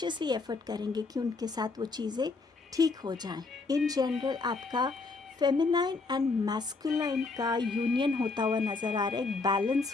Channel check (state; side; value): quieter; right; 3.9 dB